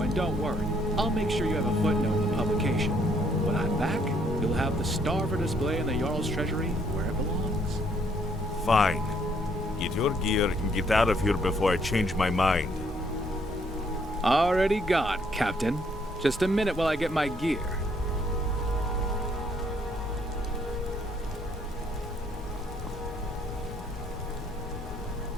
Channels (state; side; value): normal; both; correlation 0.68